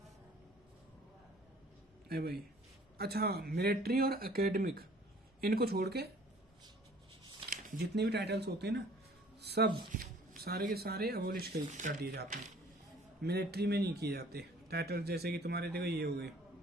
अरे भाई अच्छा, मिलिट्री और एकेडमिक, इनको छोड़ के जितने भी टाइटल्स होते हैं ना, सब सारे के सारे अबोलिश कर दिए जाते हैं। मिलिट्री में नहीं किए जाते टाइटल्स, जैसे कि तुम्हारे देखो ये हो गए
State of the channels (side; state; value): both; normal; correlation 0.53